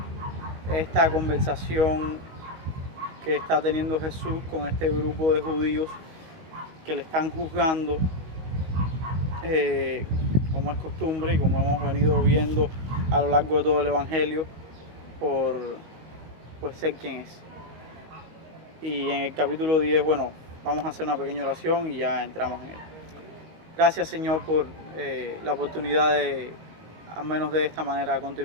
esta conversación que está teniendo Jesús con este grupo de judíos que le están juzgando, como es costumbre y como hemos venido viendo a lo largo de todo el Evangelio, por ser quien es. Y en el capítulo 10, bueno, vamos a hacer una pequeña oración y ya entramos en él. Gracias, Señor, por la oportunidad de, al menos de esta manera,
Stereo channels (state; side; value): late; left; 18 ms